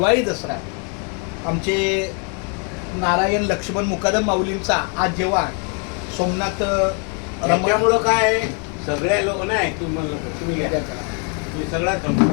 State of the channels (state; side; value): quieter; right; 37.8 dB